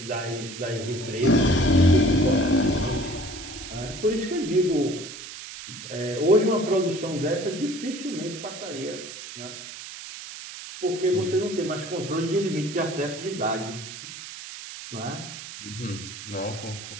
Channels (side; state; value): right; noise; hiss, 11 dB below the sound